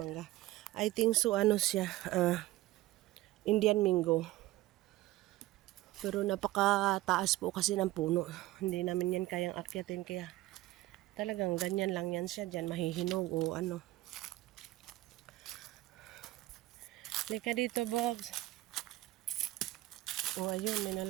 I think so siya, Indian mango. Pero napakataas po kasi ng puno. Hindi namin yan kayang akyatin, kaya talagang ganyan lang yan siya dyan, mahihinog o ano. Lika dito, Bogs. Ayun, may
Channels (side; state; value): left; quieter; 17.1 dB